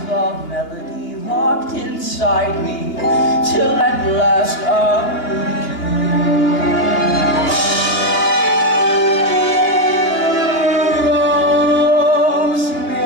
the melody locked inside me, till at last I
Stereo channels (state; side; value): late; right; 2.8 ms